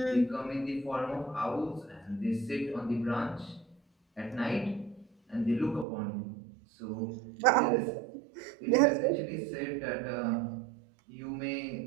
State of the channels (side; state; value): left; drops out; at 5.9 s